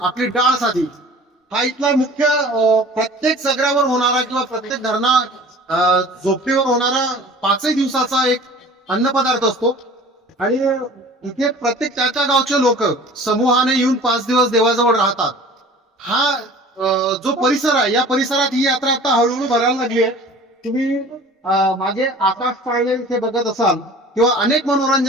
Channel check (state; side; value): normal; both; correlation 0.44